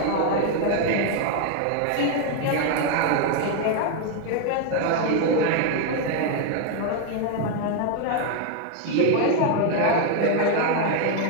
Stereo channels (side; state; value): both; different; correlation 0.01